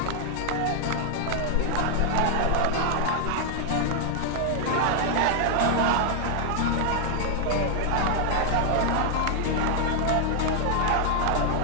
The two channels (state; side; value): different; both; correlation 0.00